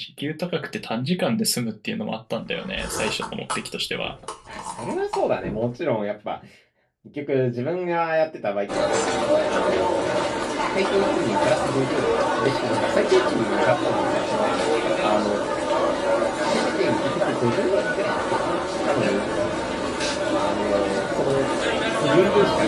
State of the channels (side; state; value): both; identical; correlation 1.00